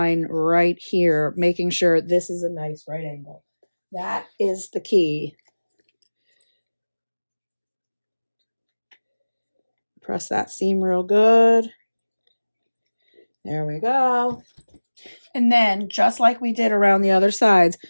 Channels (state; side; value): inverted; both; correlation -1.00